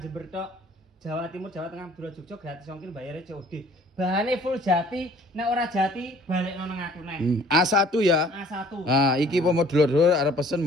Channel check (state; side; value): normal; both; correlation 0.54